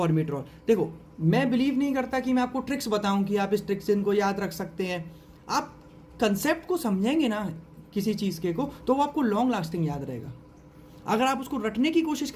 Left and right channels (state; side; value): identical; both; correlation 1.00